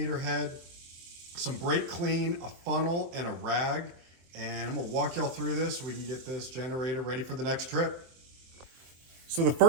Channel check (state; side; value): late; left; 23 ms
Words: head, some brake clean, a funnel, and a rag. And I'm gonna walk y'all through this so we can get this generator ready for the next trip. So the